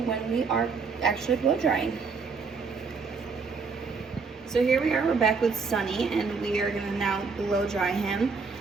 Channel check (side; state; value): left; quieter; 4.9 dB